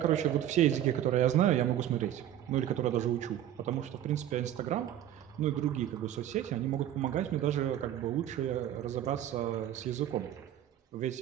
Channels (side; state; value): left; quieter; 11.6 dB